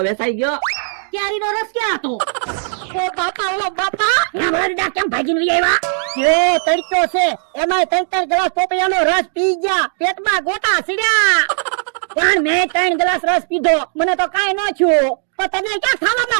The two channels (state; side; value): silent; left; 68 dB below the other